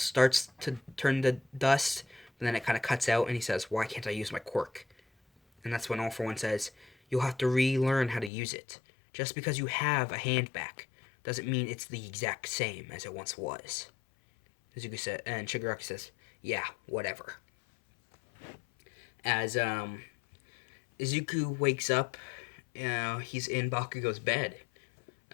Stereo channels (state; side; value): drops out; right; at 8.3 s